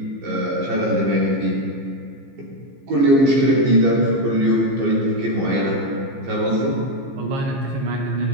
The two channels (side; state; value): left; late; 15 ms